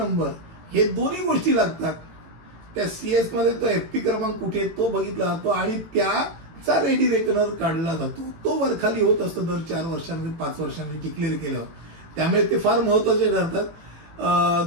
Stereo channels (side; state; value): left; late; 18 ms